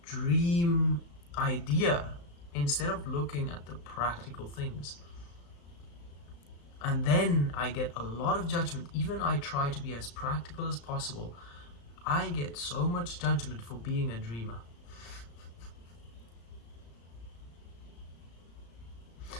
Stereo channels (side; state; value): right; late; 35 ms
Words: dream idea instead of looking at the practical things. And then I get a lot of judgment. Even I try to be as practical as possible. I get so much judgment for being a dreamer.